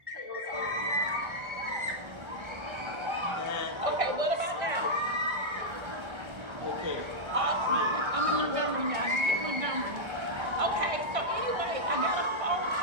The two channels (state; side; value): late; left; 1.3 ms